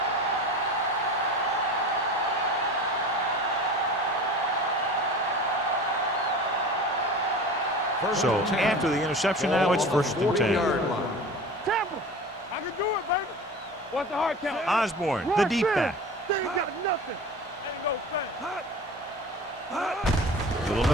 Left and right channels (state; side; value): normal; both; correlation 0.36